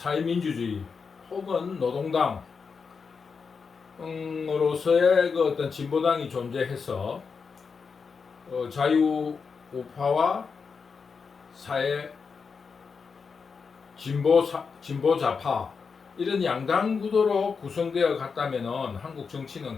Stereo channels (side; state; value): right; quieter; 5.4 dB